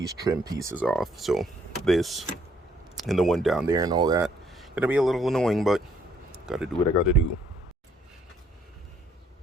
trim pieces off. So this and the one down there and all that, gonna be a little annoying, but gotta do what I gotta do.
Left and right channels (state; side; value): normal; both; correlation 0.67